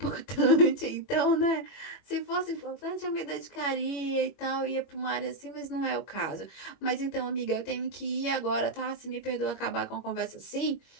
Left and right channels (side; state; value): right; late; 21 ms